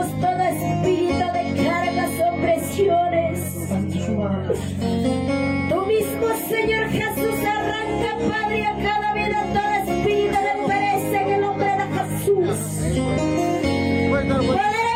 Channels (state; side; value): identical; both; correlation 1.00